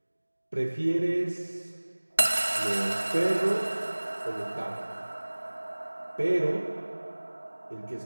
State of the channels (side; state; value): both; inverted; correlation -1.00